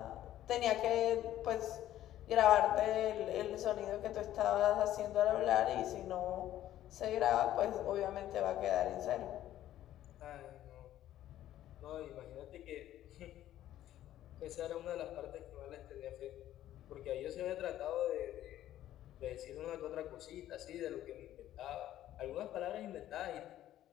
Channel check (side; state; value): right; quieter; 12.8 dB